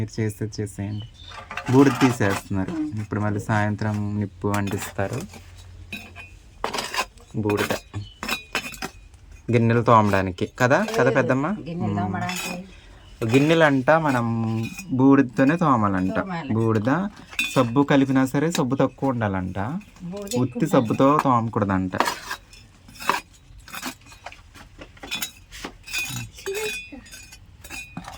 చేసేయండి. బూడిద తీసేస్తున్నారు ఇప్పుడు, మళ్ళీ సాయంత్రం నిప్పు అంటిస్తారు. బూడిద గిన్నెలు తోమడానికి కదా పెద్దమ్మ? గిన్నెలు అంట మనం బూడిదతోనే తోమాలంట. బూడిద సబ్బు కలిపినా సరే సబ్బు తక్కువ ఉండాలంట, ఉత్తి సబ్బుతో తోమకూడదంట.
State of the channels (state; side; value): identical; both; correlation 1.00